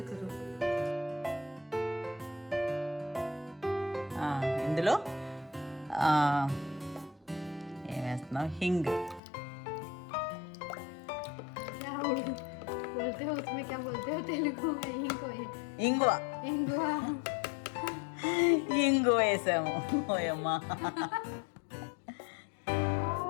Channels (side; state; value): right; drops out; at 9.2 s